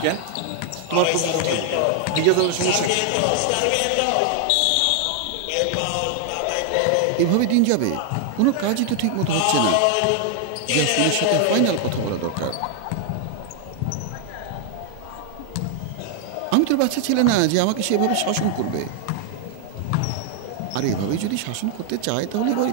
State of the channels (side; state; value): both; different; correlation 0.00